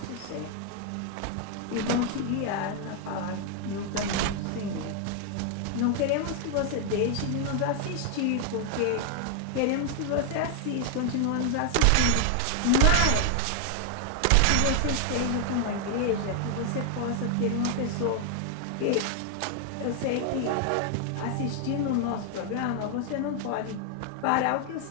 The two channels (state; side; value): different; both; correlation 0.00